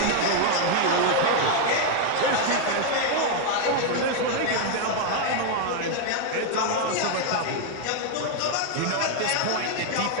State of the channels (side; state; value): both; different; correlation 0.00